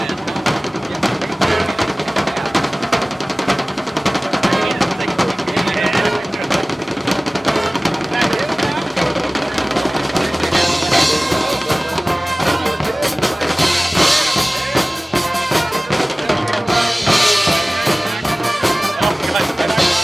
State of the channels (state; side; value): normal; both; correlation 0.98